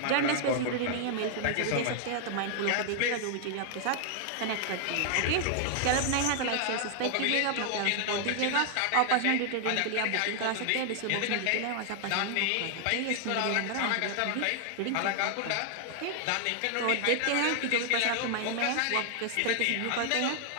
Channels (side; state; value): both; different; correlation 0.00